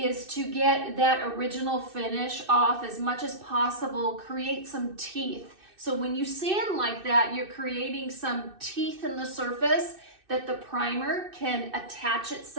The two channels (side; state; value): left; late; 2.6 ms